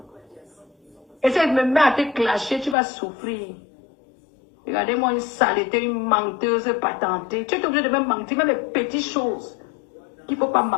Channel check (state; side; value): drops out; right; at 2.8 s